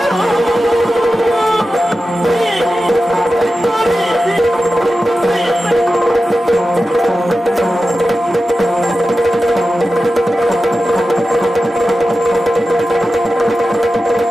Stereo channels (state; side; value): normal; both; correlation 0.93